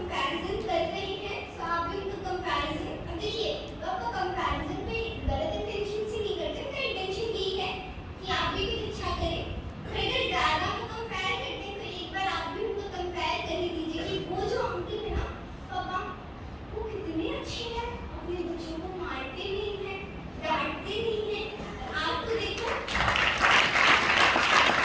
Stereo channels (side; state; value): both; identical; correlation 1.00